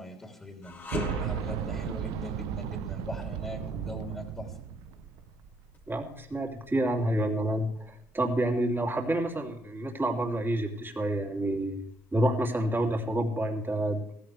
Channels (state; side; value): normal; both; correlation 0.73